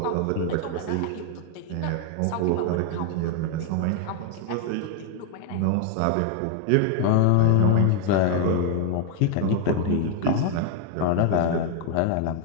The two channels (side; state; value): both; different; correlation 0.00